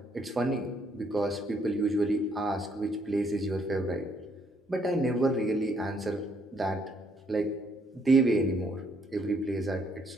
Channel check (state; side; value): normal; both; correlation 0.69